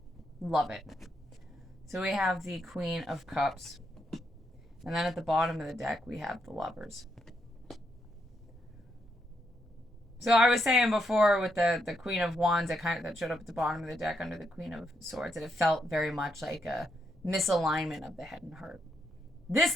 Love it. So we have the Queen of Cups. And then at the bottom of the deck, we have the Lovers. So I was saying before with the Queen of Wands that showed up at the bottom of the deck under the Queen of Swords, that it felt very much like a misalignment of the head and heart. This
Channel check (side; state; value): both; normal; correlation 0.79